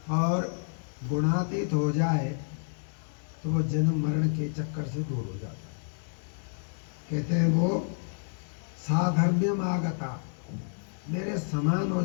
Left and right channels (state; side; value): silent; right; 57 dB below the other